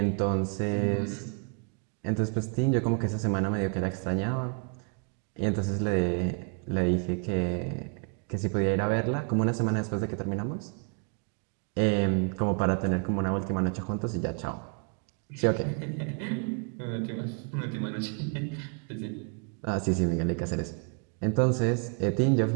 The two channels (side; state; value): left; quieter; 37.7 dB